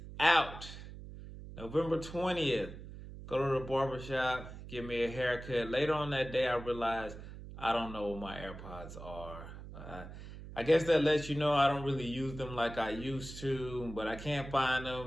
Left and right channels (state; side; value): noise; right; hum, 13 dB below the sound